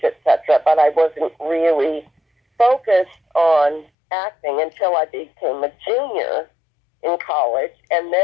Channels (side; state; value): right; drops out; at 3.9 s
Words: etc. But I wasn't really focused on acting until I became a junior in college, and